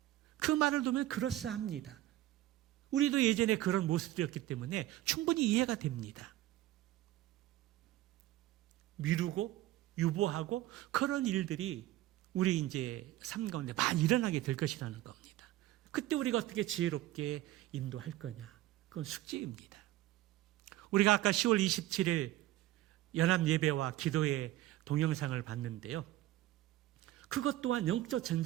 그 말을 두면 그럴싸합니다. 우리도 예전에 그런 모습이었기 때문에 충분히 이해가 됩니다. 미루고 유보하고 그런 일들이 우리 이제 삶 가운데 많이 일어나게 될 것이라는 겁니다. 그때 우리가 어떻게 지혜롭게 인도할 거냐? 그건 숙제입니다. 우리가 아까 10월 27일 연합 예배와 기도의 동영상을 봤는데요. 그것 또한 영적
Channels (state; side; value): quieter; left; 15.1 dB